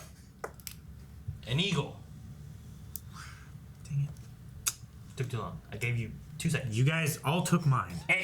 An eagle. Dang it. Took too long. I gave you 2 seconds. You guys all took mine.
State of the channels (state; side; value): identical; both; correlation 1.00